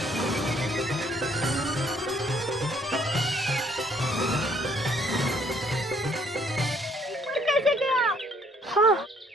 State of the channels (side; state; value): both; normal; correlation 0.64